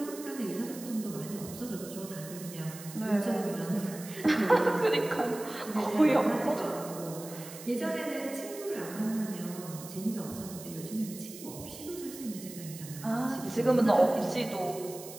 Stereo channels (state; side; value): noise; right; hiss, 14 dB below the sound